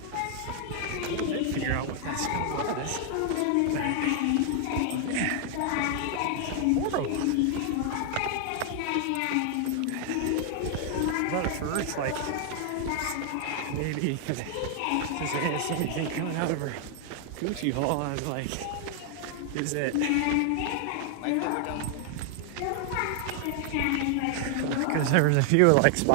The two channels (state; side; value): different; both; correlation 0.00